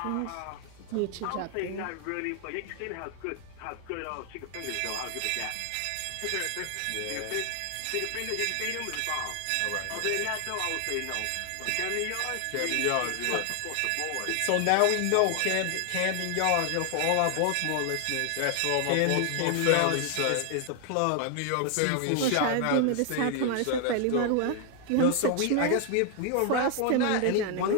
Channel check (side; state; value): both; different; correlation 0.00